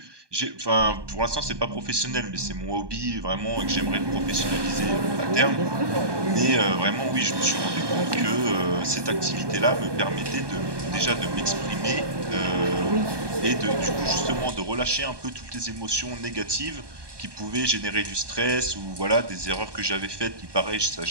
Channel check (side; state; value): left; late; 1.2 ms